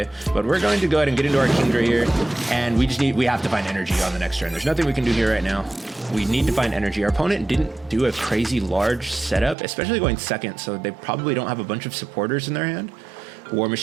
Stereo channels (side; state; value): left; drops out; at 9.6 s